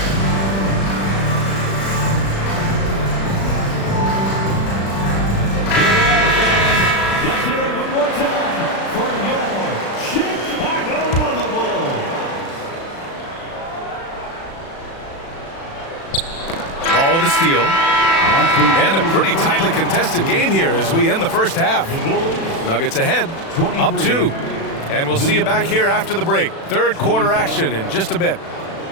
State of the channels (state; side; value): late; right; 36 ms